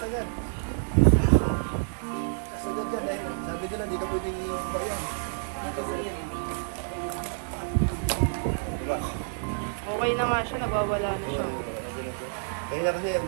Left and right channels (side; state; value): left; silent; digital silence